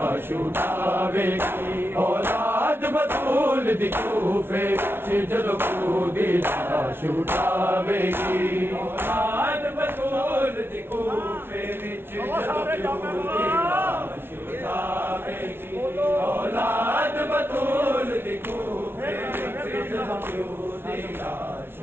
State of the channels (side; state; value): left; late; 0.11 ms